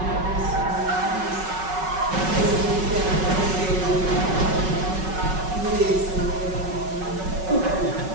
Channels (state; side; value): late; left; 5.3 ms